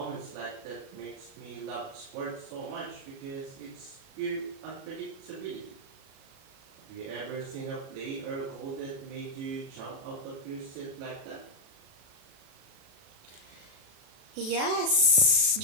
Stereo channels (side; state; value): left; late; 37 ms